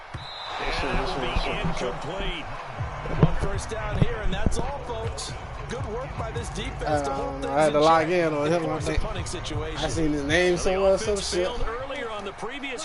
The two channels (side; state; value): both; identical; correlation 1.00